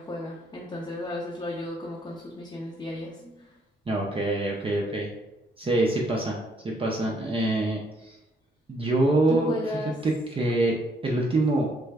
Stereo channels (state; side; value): normal; both; correlation 0.70